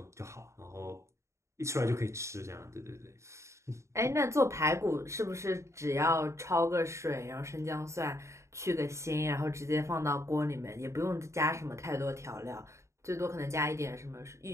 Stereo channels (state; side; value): late; left; 0.14 ms